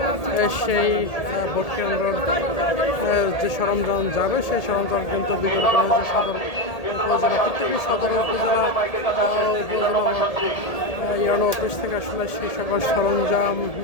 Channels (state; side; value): late; right; 1.8 ms